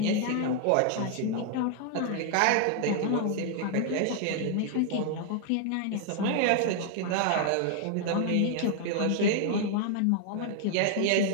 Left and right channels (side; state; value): both; different; correlation 0.00